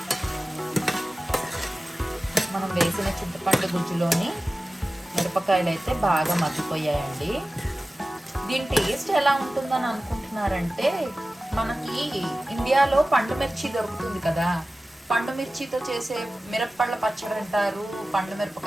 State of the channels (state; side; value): normal; both; correlation 0.96